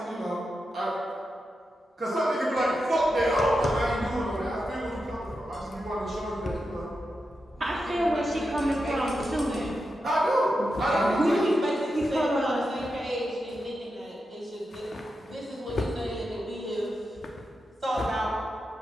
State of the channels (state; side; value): normal; both; correlation 0.88